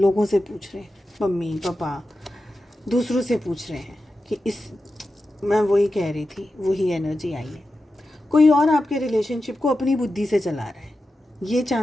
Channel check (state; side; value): normal; both; correlation 0.92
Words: से पूछ रहे हैं, मम्मी पापा, दूसरों से पूछ रहे हैं कि इस मैं वही कह रही थी, वही एनर्जी आई है। कोई और आपके रिलेशनशिप को अपनी बुद्धि से चला रहा है, ये